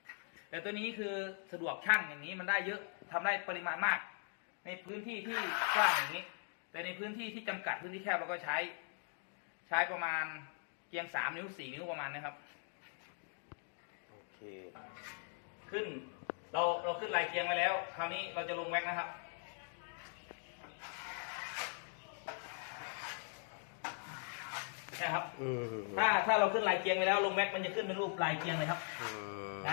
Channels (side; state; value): right; silent; 51 dB below the other